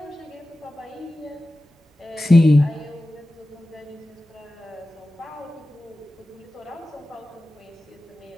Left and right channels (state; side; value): normal; both; correlation 0.95